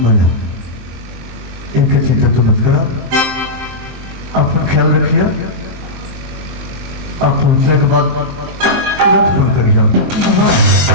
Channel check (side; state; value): left; late; 23 ms